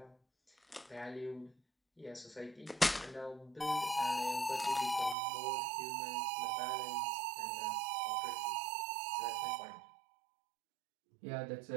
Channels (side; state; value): left; drops out; at 5.2 s